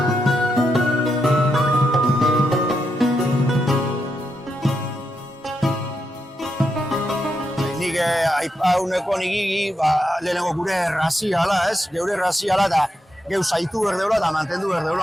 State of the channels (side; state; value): both; normal; correlation 0.84